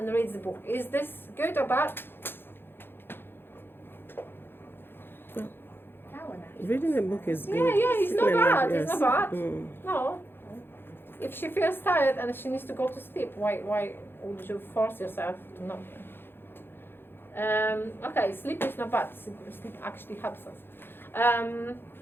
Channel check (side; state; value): right; late; 0.10 ms